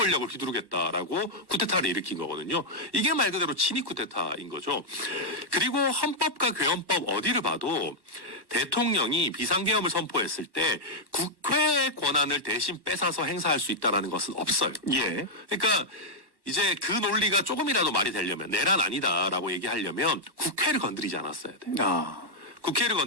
휘두르겠다라고 쿠데타를 일으킨 거거든요. 이게 말 그대로 친위 쿠데타인 거죠. 그리고 헌법과 괴헌법 어디를 봐도 대통령이 비상계엄을 선포했을 때 국회의 권한을 대신 뺏어서 행사할 수 있다는 것은 없어요. 예. 그러니까 이제 그 논리가 조금이라도 말이 되려면 내란 아니다라고 얘기하려면 국회를 건드리지 않았어야 돼요. 국회를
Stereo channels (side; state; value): left; late; 1.1 ms